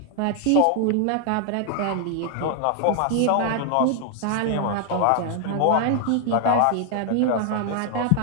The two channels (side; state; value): both; different; correlation 0.00